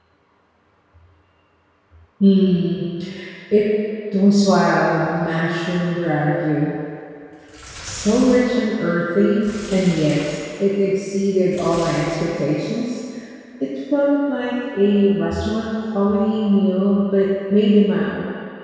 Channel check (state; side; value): identical; both; correlation 1.00